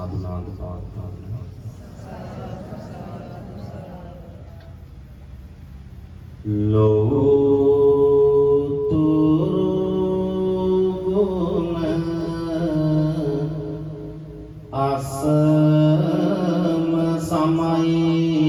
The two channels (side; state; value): both; identical; correlation 1.00